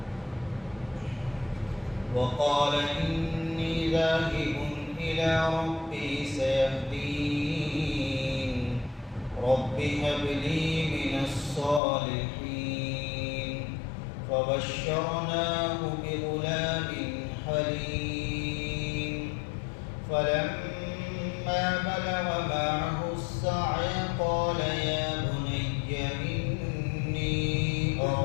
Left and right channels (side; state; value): right; drops out; at 11.8 s